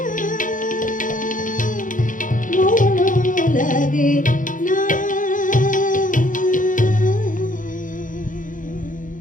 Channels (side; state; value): right; late; 0.38 ms